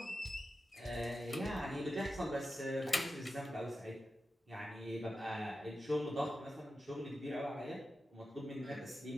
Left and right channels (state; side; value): normal; both; correlation 0.91